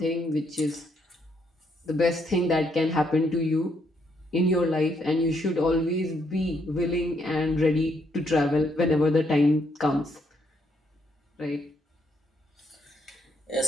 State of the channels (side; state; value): both; normal; correlation 0.74